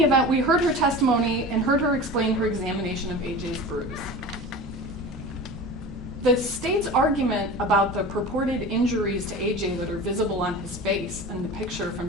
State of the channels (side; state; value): both; normal; correlation 0.34